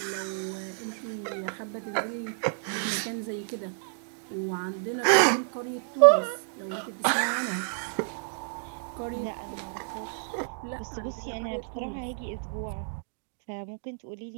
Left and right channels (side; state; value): left; silent; digital silence